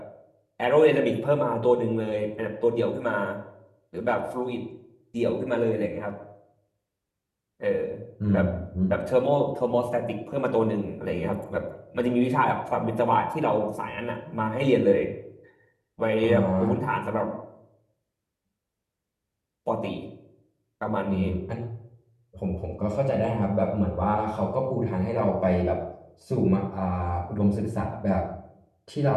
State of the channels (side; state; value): both; identical; correlation 1.00